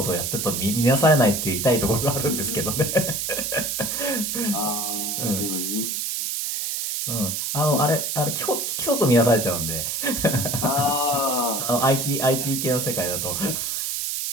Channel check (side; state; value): right; noise; hiss, 1 dB below the sound